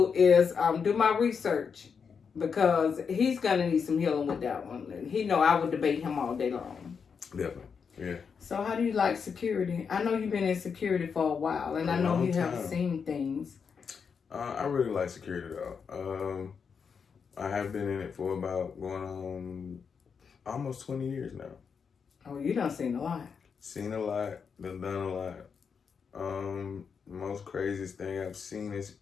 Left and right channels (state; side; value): quieter; right; 6.2 dB